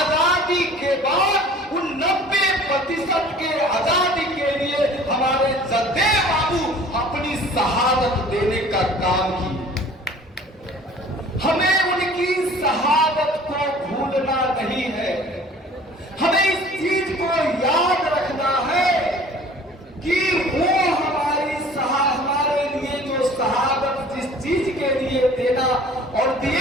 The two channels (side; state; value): both; normal; correlation 0.48